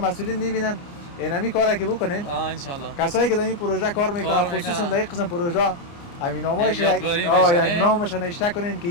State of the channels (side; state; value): right; late; 29 ms